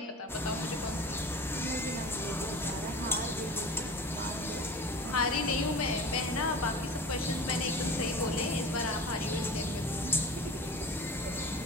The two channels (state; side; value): normal; both; correlation 0.36